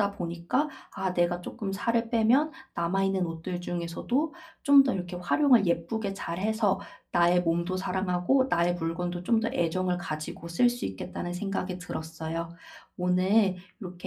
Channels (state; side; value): identical; both; correlation 1.00